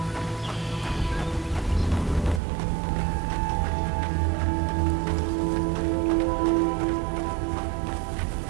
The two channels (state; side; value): drops out; left; at 2.4 s